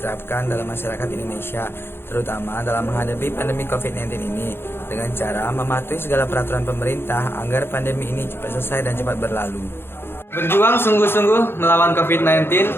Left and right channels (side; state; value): right; late; 0.11 ms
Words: dalam masyarakat Indonesia, terutama dalam menghadapi pandemi COVID-19 ini, dengan cara mematuhi segala peraturan pemerintah agar pandemi ini cepat selesai dan cepat berlalu. Berjuang sungguh-sungguh melawan COVID-19